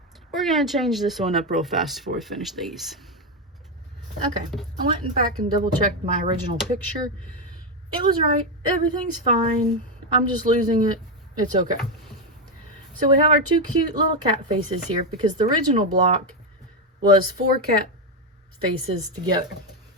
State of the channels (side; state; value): both; normal; correlation 0.07